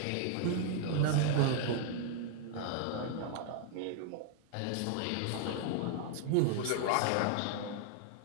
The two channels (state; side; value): different; both; correlation 0.00